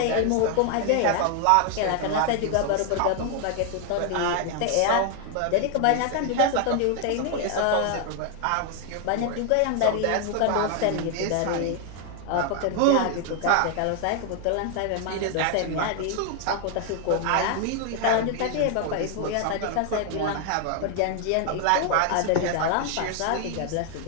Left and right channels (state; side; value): different; both; correlation 0.00